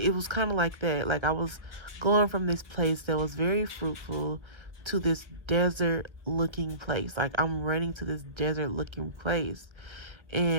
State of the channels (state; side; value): late; left; 1.3 ms